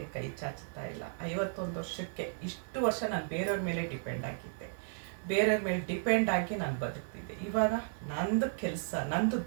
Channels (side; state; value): left; silent; digital silence